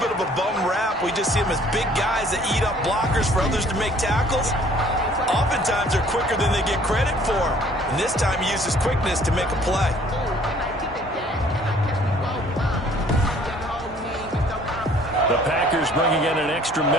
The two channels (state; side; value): normal; both; correlation 0.56